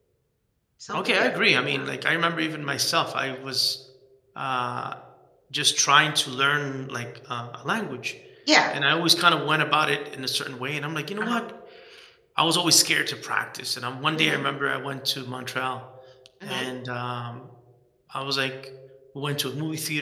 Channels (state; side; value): identical; both; correlation 1.00